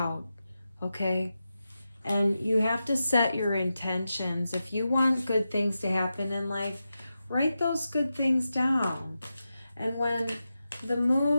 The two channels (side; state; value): both; inverted; correlation -0.91